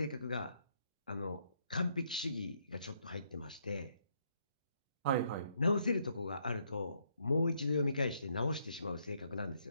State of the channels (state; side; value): inverted; both; correlation -0.73